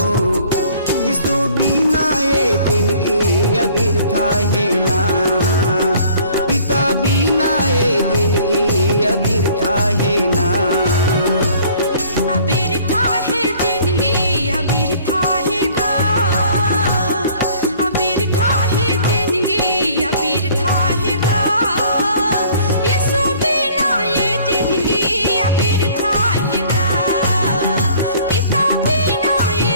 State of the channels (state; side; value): inverted; both; correlation -0.54